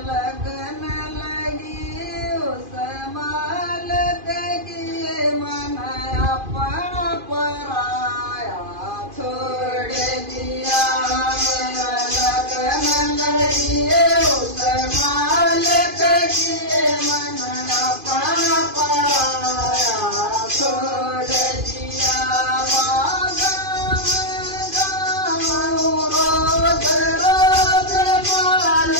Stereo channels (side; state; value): left; late; 2.5 ms